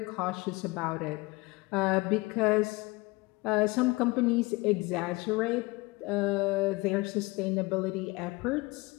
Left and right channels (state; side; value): quieter; right; 23.8 dB